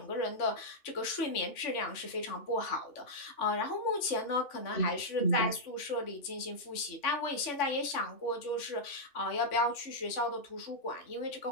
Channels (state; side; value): late; right; 3.4 ms